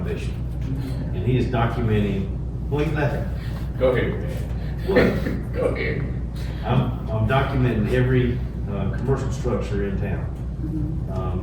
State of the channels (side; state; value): both; identical; correlation 1.00